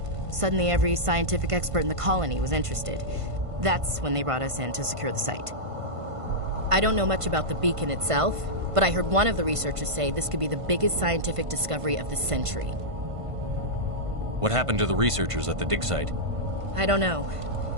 Suddenly, every scientific expert in the colony was interested. That's when they brought us in to secure the site. I don't know much about the beacon itself, but I heard one of the researchers say this could be the biggest scientific discovery of the century. What happened to the researchers at the dig site? I don't know.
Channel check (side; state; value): left; late; 1.5 ms